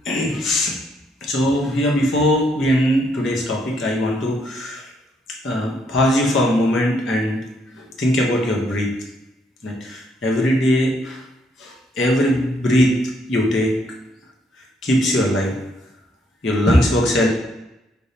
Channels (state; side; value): normal; both; correlation 0.72